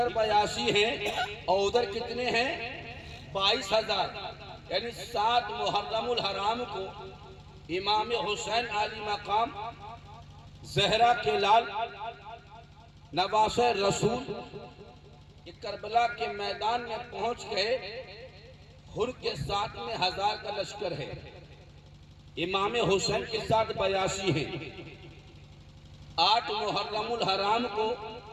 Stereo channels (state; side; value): identical; both; correlation 1.00